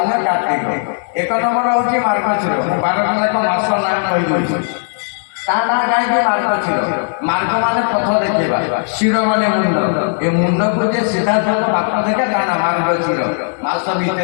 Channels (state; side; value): silent; right; digital silence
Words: କାର୍ତ୍ତିକ। 1 ନମ୍ବର ହେଉଛି ମାର୍ଗଶୀର। ମୁଁ 12ଟା ଯାକ ମାସ ନାଁ କହିଦେଉଛି। ତା ନାଁ କାହିଁକି ମାର୍ଗଶୀର? ମାର୍ଗ ମାନେ ପଥ ଦେଖେଇବା, ଶିର ମାନେ ମୁଣ୍ଡ। ଏ ମୁଣ୍ଡକୁ ଯେ ସିଧାସଳଖ ବାଟ ଦେଖେ ତା ନାଁ ମାର୍ଗଶୀର। ମାସ